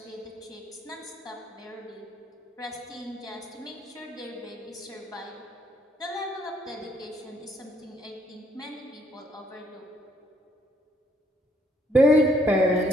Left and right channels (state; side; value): normal; both; correlation 0.68